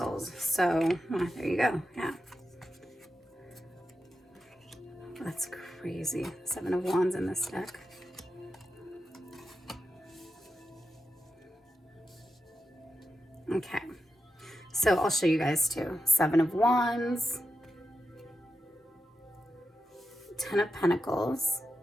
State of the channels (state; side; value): normal; both; correlation 0.90